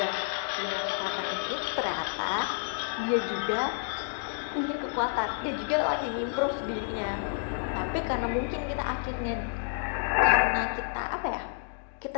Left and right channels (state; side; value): silent; right; digital silence